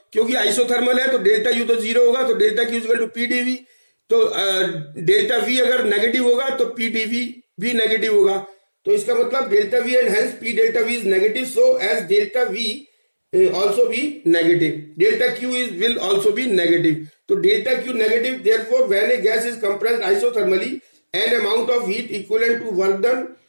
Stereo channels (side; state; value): both; inverted; correlation -1.00